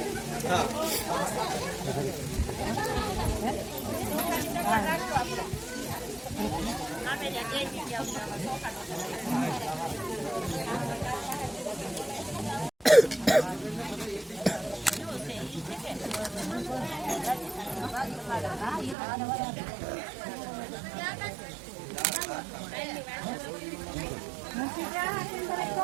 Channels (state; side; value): drops out; left; at 18.9 s